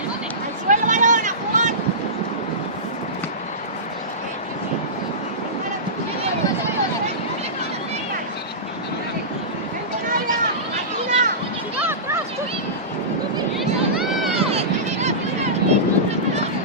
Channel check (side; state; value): both; normal; correlation -0.19